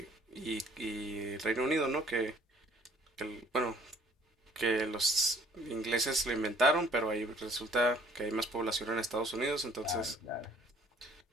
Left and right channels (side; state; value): both; normal; correlation 0.57